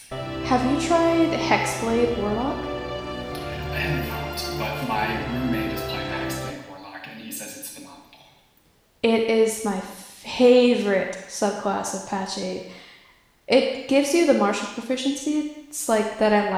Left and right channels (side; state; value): both; identical; correlation 1.00